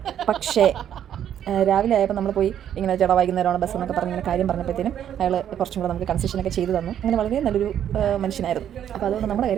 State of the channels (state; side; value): quieter; left; 9.9 dB